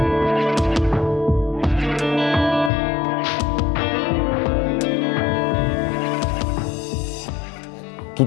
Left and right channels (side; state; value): right; drops out; at 2.7 s